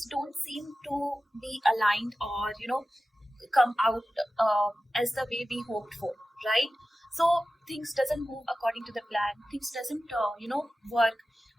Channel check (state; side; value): normal; both; correlation 0.95